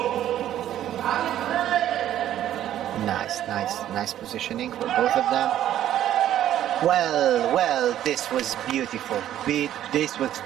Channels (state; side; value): quieter; left; 11.8 dB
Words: Nice positioning for both of them. Well, this was beautiful. This was